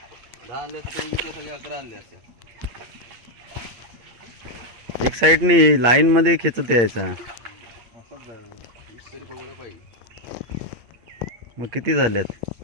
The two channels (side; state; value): left; late; 8.6 ms